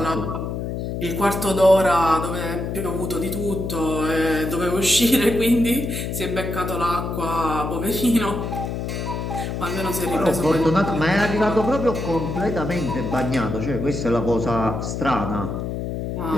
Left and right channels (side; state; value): left; noise; hum, 4 dB below the sound